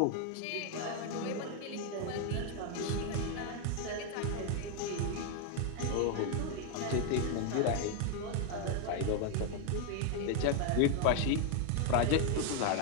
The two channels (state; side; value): different; both; correlation 0.00